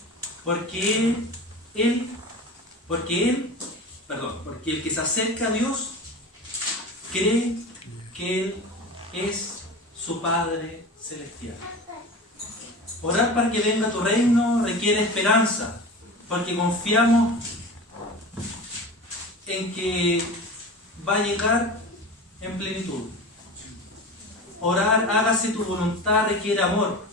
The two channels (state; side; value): normal; both; correlation 0.32